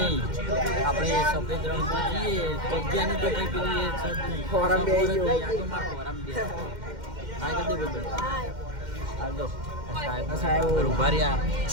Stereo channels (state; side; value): late; left; 2.1 ms